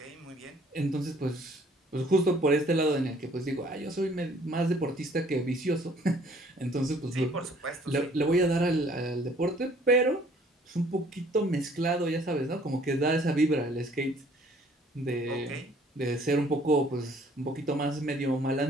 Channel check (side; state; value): both; normal; correlation 0.58